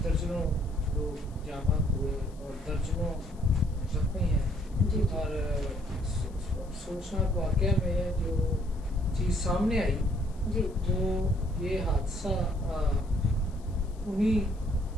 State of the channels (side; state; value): left; noise; hiss, 28 dB below the sound